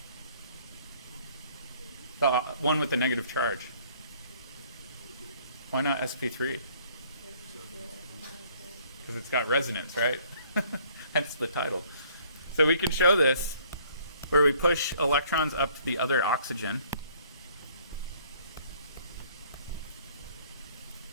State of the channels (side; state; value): both; inverted; correlation -0.59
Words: The one with the negative charge. Why not sp3? Because it's got resonance, right? Hence the title. So we can show this where we push electrons up to the other oxygen.